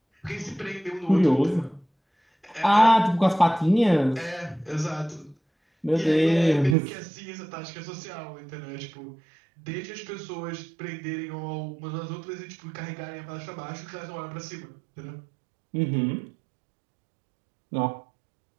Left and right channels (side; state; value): left; drops out; at 6.8 s